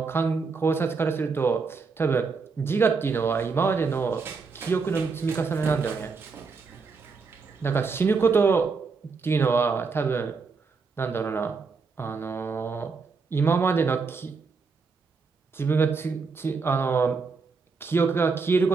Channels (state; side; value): quieter; left; 4.8 dB